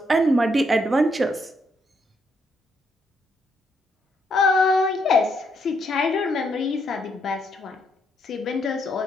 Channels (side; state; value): both; normal; correlation 0.75